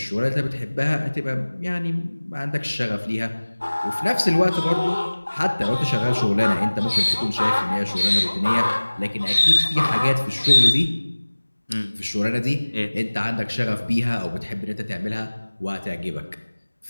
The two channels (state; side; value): inverted; both; correlation -1.00